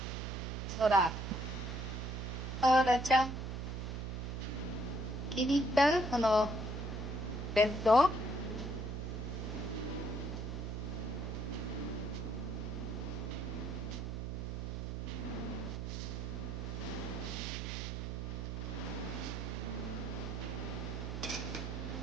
ほら、あらちゃん、気に入ったこのベッド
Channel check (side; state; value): right; noise; hum, 4 dB below the sound